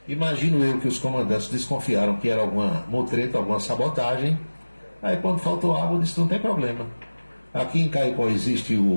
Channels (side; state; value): both; inverted; correlation -1.00